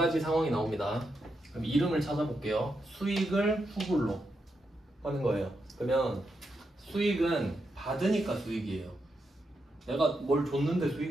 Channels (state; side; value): normal; both; correlation 0.84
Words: 상황이 나옵니다. 그럼 이름을 찾아볼게요. 수익을 후불로 하는 거예요. 그러면 수익은 받으니까 수익이에요. 내가 뭘 줬는데